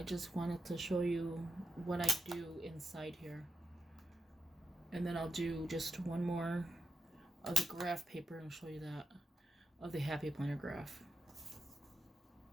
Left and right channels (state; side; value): normal; both; correlation 0.88